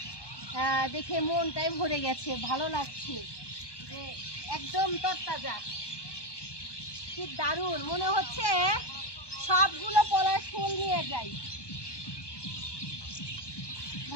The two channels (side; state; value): right; late; 1.1 ms